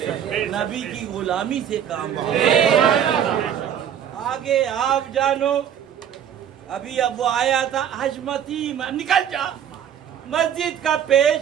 नबी की गुलामी से काम चलेगा। आगे आप जानो। अभी अब वो आया था हजमती, निकल जा मस्जिद का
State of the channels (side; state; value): left; quieter; 9.2 dB